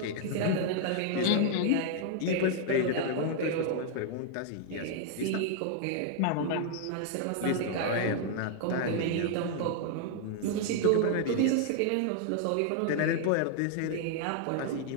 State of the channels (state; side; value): different; both; correlation 0.00